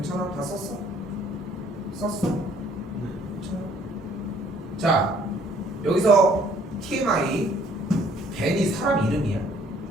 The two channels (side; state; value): both; normal; correlation 0.60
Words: 다 썼어? 썼어? 괜찮아? 자, 여기서 TMI 벤이 사람 이름이야.